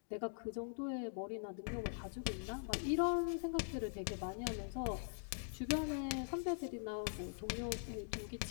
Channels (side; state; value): right; silent; digital silence